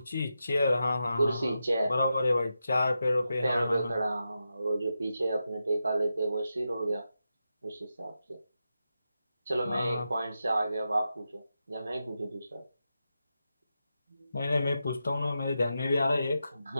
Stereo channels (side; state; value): both; inverted; correlation -0.88